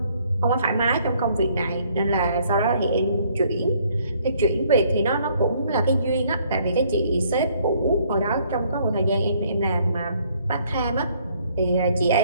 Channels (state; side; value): inverted; both; correlation -0.64